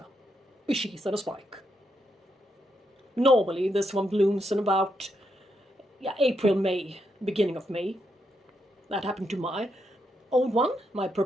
A sheath and a spike. Normally this one blooms in about April, May, beginning of May. That happened to my old one, my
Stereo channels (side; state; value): both; normal; correlation 0.80